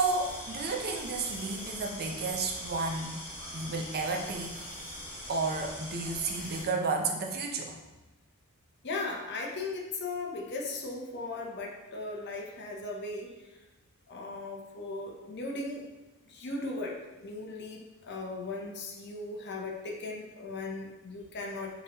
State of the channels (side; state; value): both; normal; correlation 0.03